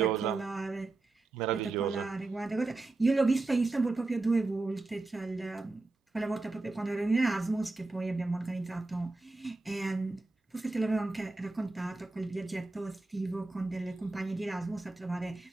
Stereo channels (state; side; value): quieter; left; 3.3 dB